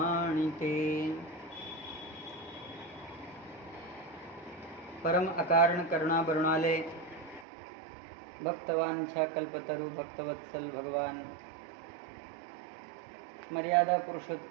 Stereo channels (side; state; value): left; drops out; at 7.5 s